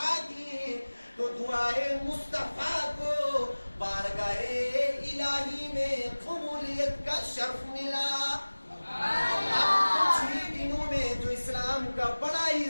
کی تو دعائے مصطفیٰ کو بارگاہ الہی میں قبولیت کا شرف ملا. اب کچھ ہی دنوں میں جو اسلام کا بڑا ہی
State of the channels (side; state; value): both; inverted; correlation -1.00